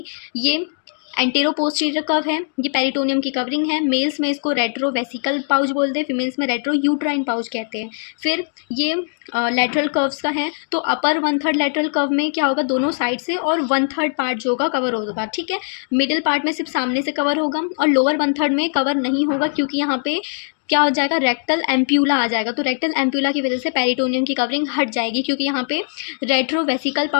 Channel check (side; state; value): right; silent; digital silence